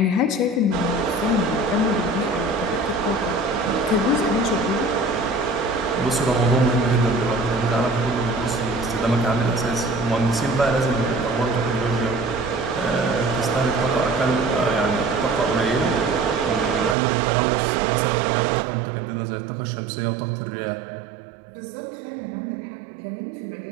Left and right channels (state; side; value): drops out; left; at 16.9 s